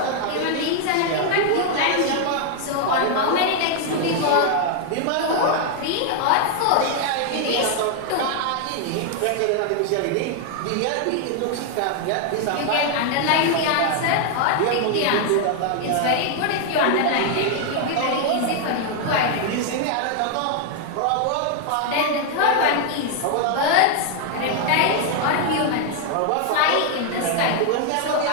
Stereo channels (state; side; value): different; both; correlation 0.00